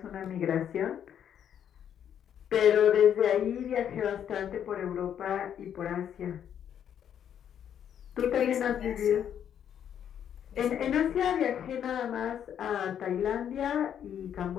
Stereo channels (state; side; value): quieter; right; 9.2 dB